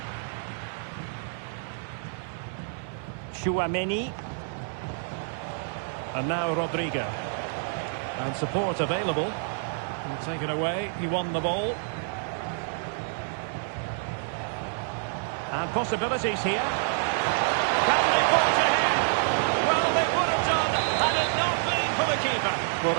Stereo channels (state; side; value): silent; left; digital silence